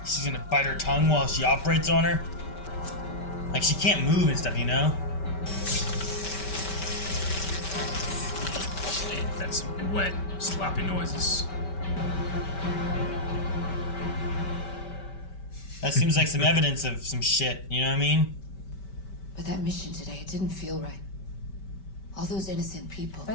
She's gonna bite her tongue while she operates on her. Like she can't move and stuff, you know? That's wet, sloppy noises. That seems like some evidence of some shit, you know what I mean? But that mission today, it didn't feel right. All those innocent people.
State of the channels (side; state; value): right; late; 5.2 ms